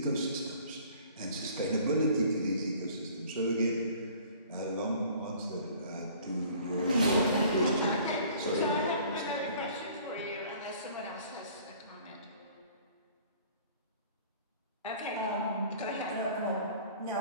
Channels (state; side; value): inverted; both; correlation -0.52